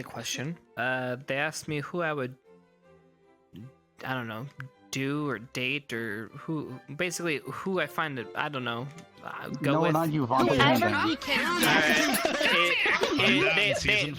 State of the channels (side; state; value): both; identical; correlation 1.00